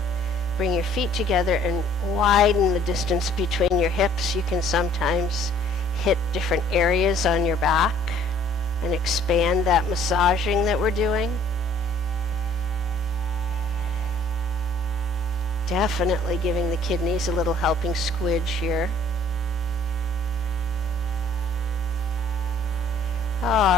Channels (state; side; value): normal; both; correlation 0.57